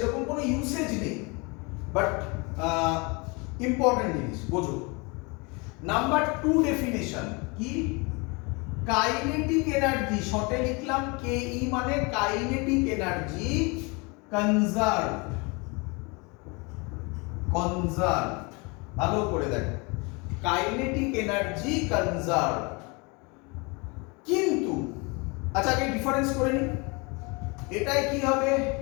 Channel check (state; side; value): quieter; right; 28.9 dB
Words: কোনো ইউসেজ নেই, বাট ইম্পর্টেন্ট জিনিস বোঝো। নাম্বার 2 ডেফিনেশন কি? কাইনেটিক এনার্জি, শর্টে লিখলাম কেই, মানে কাইনেটিক এনার্জি কনজার্ভ। ভালো করে দেখো, কাইনেটিক এনার্জি কনজার্ভ। কিন্তু আচ্ছা আগে ডিফারেন্স করে নি, এটাই কি হবে?